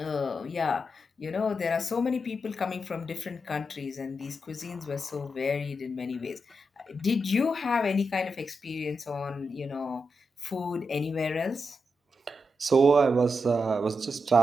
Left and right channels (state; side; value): normal; both; correlation 0.86